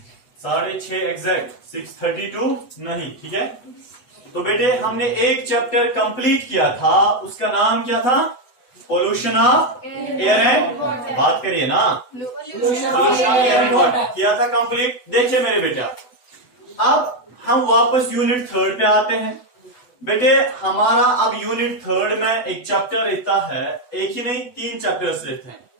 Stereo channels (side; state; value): right; late; 8.1 ms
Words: 6:30 एग्जैक्ट, 6:32 नहीं, ठीक है? तो बेटे हमने एक चैप्टर कंप्लीट किया था, उसका नाम क्या था? पोल्यूशन ऑफ एयर एंड, बात करिए ना, pollution of air and water किया था कंप्लीट। देखिए मेरे बेटा, अब हम वापस यूनिट 3 पे आते हैं। बेटे हमारा अब यूनिट 3 में एक चैप्टर रहता है, एक ही नहीं 3 चैप्टर्स रहते हैं।